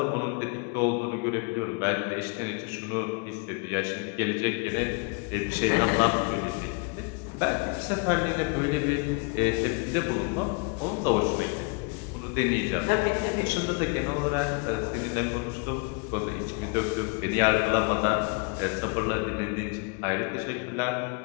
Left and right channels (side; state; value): right; quieter; 32.6 dB